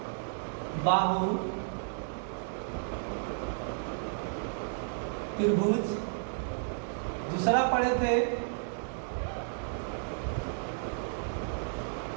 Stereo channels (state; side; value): silent; left; digital silence